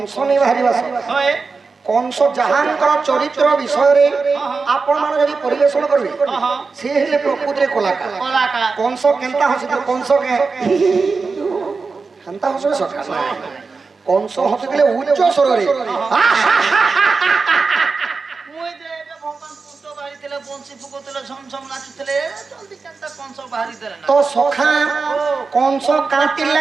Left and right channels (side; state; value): left; quieter; 4.5 dB